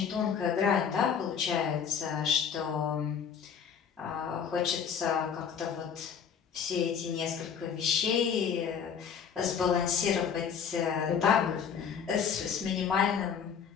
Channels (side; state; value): right; quieter; 7.3 dB